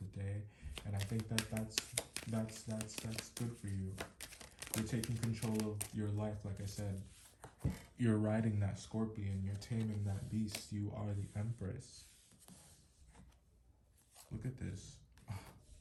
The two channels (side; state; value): both; identical; correlation 1.00